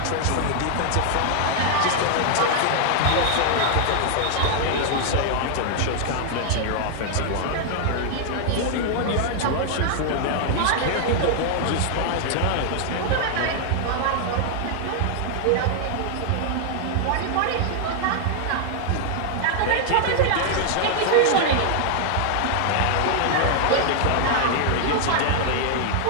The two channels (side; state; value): both; different; correlation 0.00